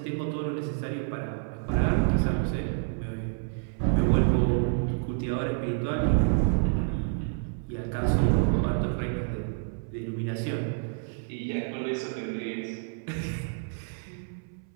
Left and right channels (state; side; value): silent; left; 59 dB below the other